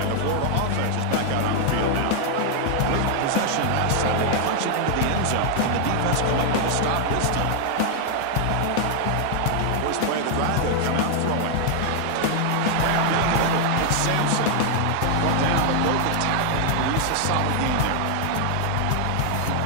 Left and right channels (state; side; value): different; both; correlation 0.00